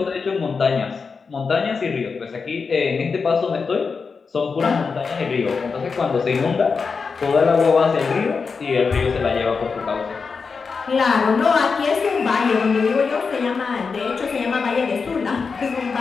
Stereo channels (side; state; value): right; quieter; 5.1 dB